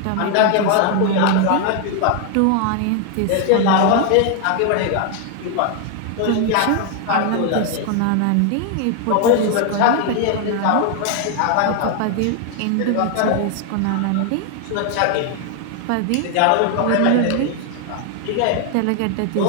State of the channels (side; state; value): both; different; correlation 0.00